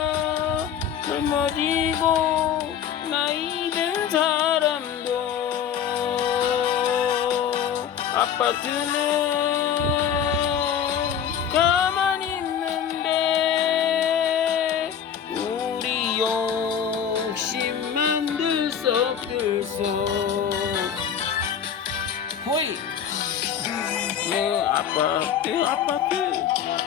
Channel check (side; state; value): right; quieter; 8.5 dB